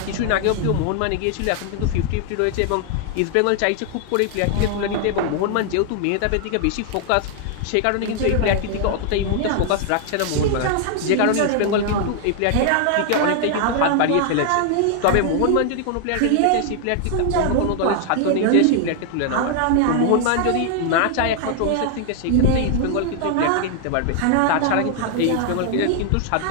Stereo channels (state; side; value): different; both; correlation 0.00